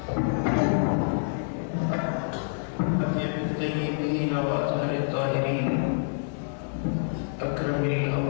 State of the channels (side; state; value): right; silent; digital silence